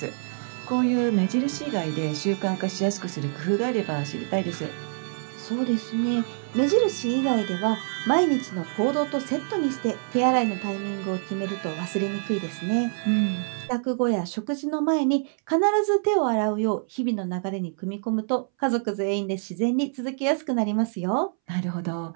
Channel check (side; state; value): left; silent; 61 dB below the other